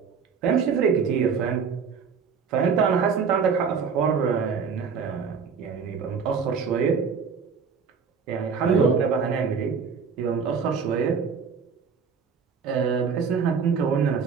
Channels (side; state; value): left; quieter; 6.0 dB